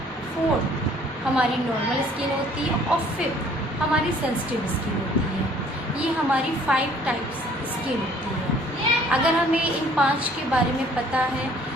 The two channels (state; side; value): normal; both; correlation 0.56